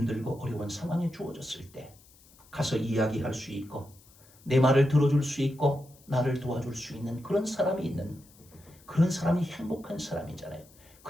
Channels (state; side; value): noise; left; hiss, 26 dB below the sound